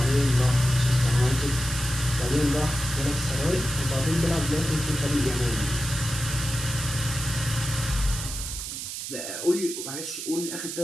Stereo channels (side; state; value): right; noise; hiss, 6 dB below the sound